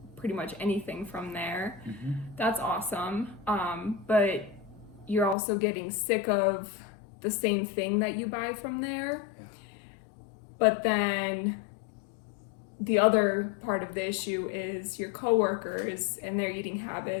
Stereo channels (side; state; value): right; drops out; at 5.4 s